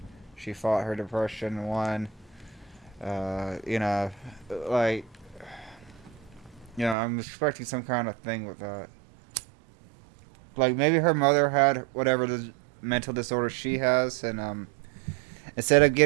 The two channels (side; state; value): left; drops out; at 7.0 s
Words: She fought her depression and won. You know, like, you know, I'm expecting some kind of thing with that. Like maybe her mother had whatever the mental disorder she has, and instead of